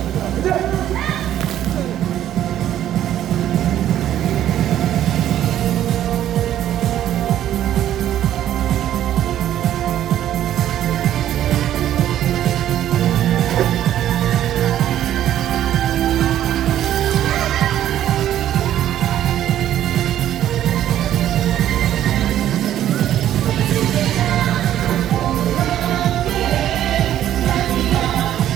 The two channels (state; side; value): quieter; left; 11.7 dB